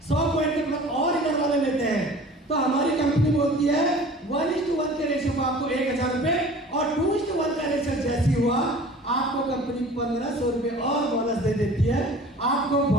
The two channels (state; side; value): normal; both; correlation 0.44